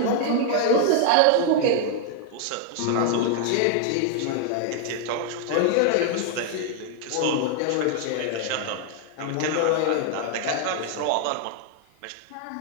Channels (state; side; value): different; both; correlation 0.00